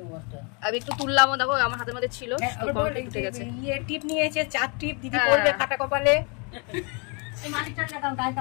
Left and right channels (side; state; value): right; quieter; 33.4 dB